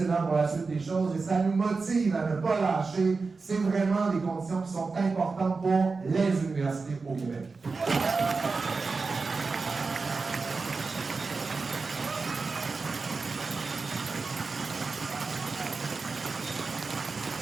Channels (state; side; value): quieter; left; 4.3 dB